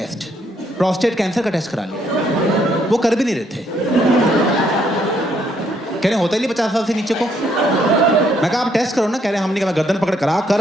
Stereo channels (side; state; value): both; normal; correlation 0.71